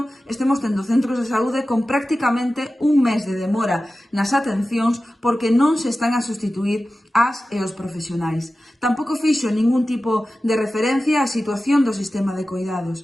estemos tendo centros de saúde con prácticamente un mes de demora nas atencións porque non se están a sustituir as e os profesionais. Tampouco fixo ningún tipo de referencia á situación do sistema de coidados.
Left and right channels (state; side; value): normal; both; correlation 0.95